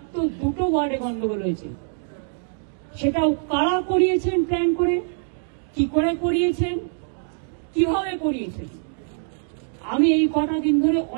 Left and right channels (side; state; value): left; silent; digital silence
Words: 2টো ওয়ার্ডে গন্ডগোল হয়েছে, সেটাও কারা করিয়েছেন, প্ল্যান করে, কি করে করিয়েছেন, কিভাবে করিয়েছেন, আমি এই কটা দিন ধরে